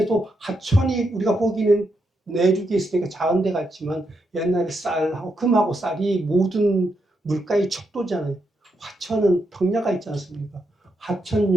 하천이 우리가 보기는 내륙에 있으니까 작은 데 같지만 옛날에 쌀하고 금하고 쌀이 모든 물가의 척도잖아요. 화천은 평야가 있지 않습니까?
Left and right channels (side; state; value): both; normal; correlation 0.82